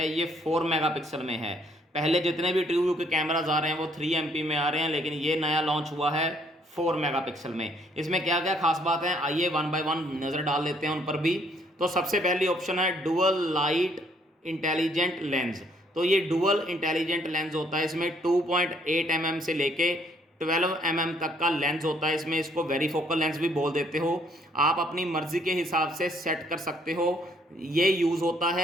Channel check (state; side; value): normal; both; correlation 0.66